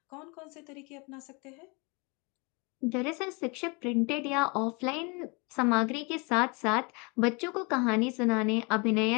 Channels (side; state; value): right; quieter; 30.1 dB